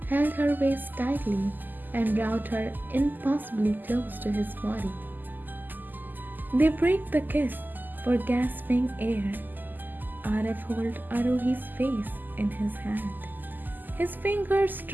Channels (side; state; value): left; late; 0.087 ms